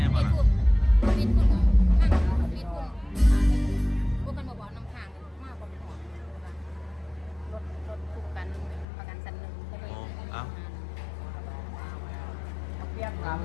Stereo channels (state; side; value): drops out; right; at 8.8 s